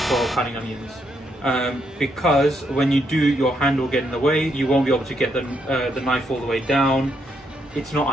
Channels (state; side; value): normal; both; correlation 0.77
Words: cutting onions. Because when you do, your hand will get in the way. You won't be able to get the knife all the way down. It's not